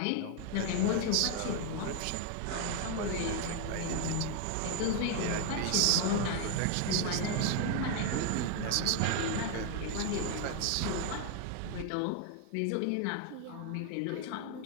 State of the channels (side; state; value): both; different; correlation 0.00